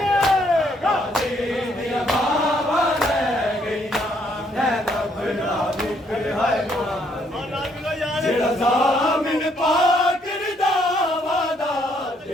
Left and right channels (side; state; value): both; normal; correlation 0.70